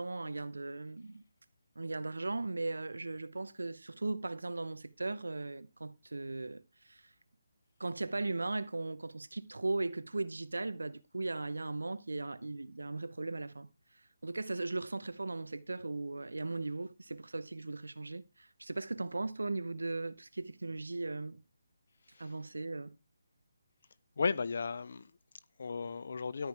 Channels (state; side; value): inverted; both; correlation -0.95